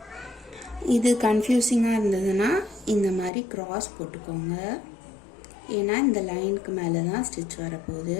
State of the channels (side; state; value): right; drops out; at 3.3 s